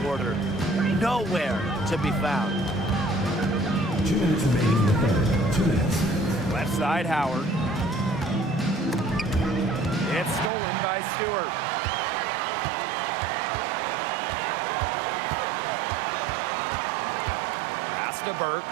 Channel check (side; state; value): left; drops out; at 10.5 s